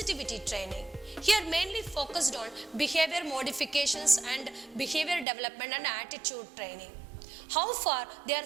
training. Here mainly focused on behavior modifications and behavior development and attitude training. How far they are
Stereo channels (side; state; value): left; drops out; at 5.2 s